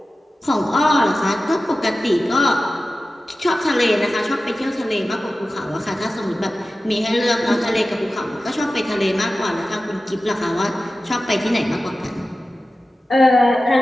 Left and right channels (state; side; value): normal; both; correlation 0.95